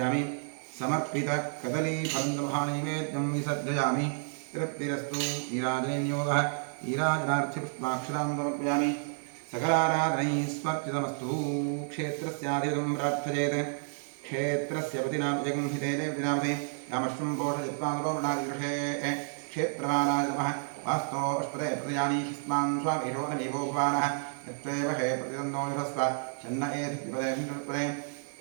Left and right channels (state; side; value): silent; left; digital silence